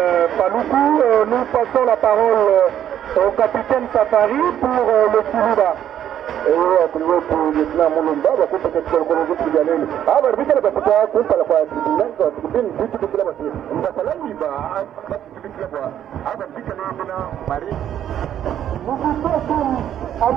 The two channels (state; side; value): quieter; left; 10.5 dB